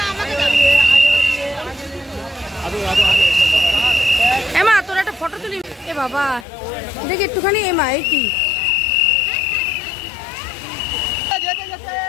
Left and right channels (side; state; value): right; drops out; at 6.5 s